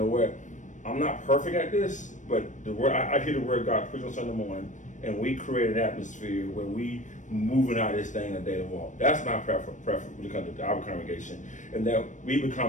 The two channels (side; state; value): right; late; 0.36 ms